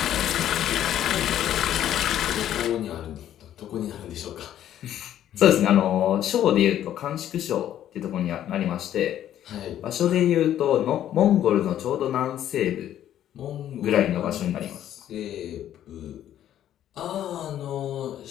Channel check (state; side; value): quieter; right; 11.4 dB